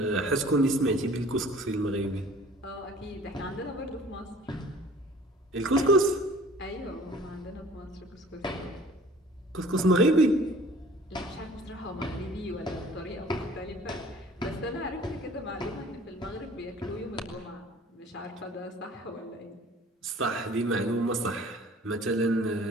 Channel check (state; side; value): normal; both; correlation 0.49